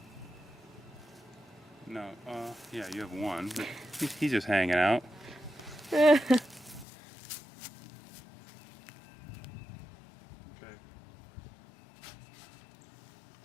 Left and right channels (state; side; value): drops out; right; at 6.9 s